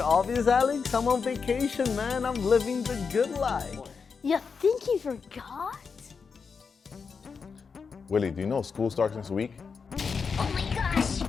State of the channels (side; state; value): right; quieter; 5.5 dB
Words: obvious, Alex? I'm on vacation, man. I'm living the good life. You think he forgot? Willie, do you know school starts next week? Oh my gosh!